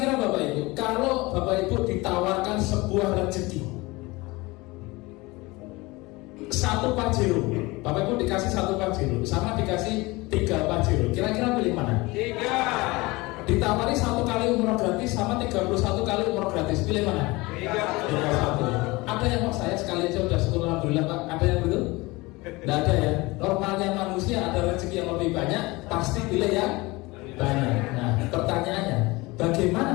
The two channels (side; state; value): right; quieter; 22.8 dB